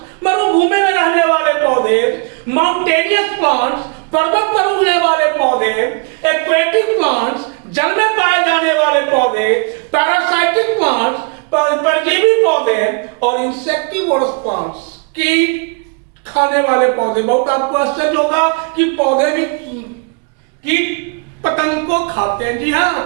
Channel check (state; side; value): quieter; left; 33.3 dB